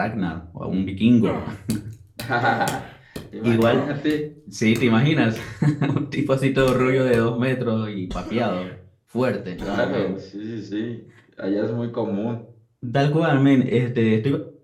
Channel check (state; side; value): identical; both; correlation 1.00